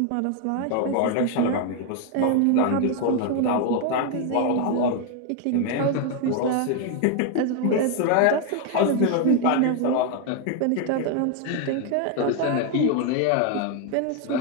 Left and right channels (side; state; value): both; different; correlation 0.01